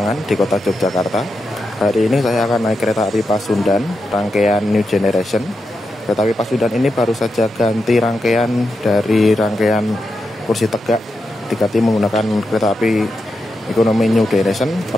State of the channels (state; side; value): normal; both; correlation 0.87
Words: di kota Yogyakarta. Hari ini saya akan naik kereta api Pasundan, rangkaian New Generation. Kereta api Pasundan ini baru saja ganti rangkaian dari rangkaian kursi tegak, diganti menggunakan kereta api ekonomi New Generation